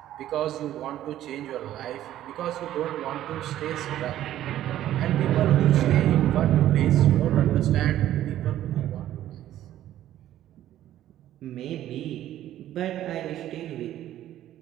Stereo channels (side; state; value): left; quieter; 12.7 dB